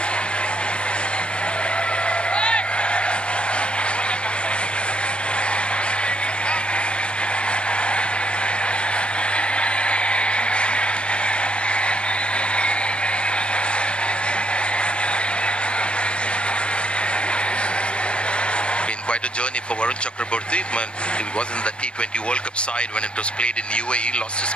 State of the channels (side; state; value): right; late; 0.056 ms